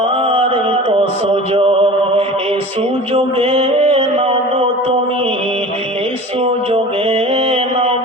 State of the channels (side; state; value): both; normal; correlation 0.38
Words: এই তো সুযোগ। এই সুযোগে নাও গো তুমি, এই সুযোগে নাও